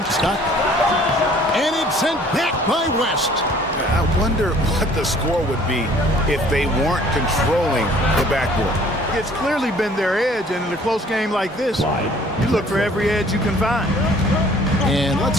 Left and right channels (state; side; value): normal; both; correlation 0.55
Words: Stockton. And it's sent back by West. I wonder what the score would be if they weren't controlling the backboard. it's clearly been their edge, and in a close game like this, you look for every edge you can find. And